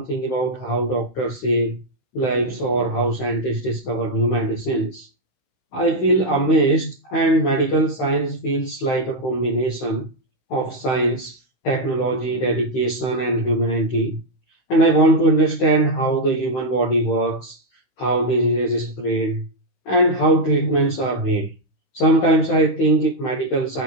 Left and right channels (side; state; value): right; late; 16 ms